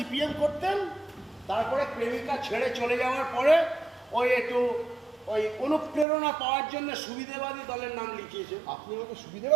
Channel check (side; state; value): left; drops out; at 6.1 s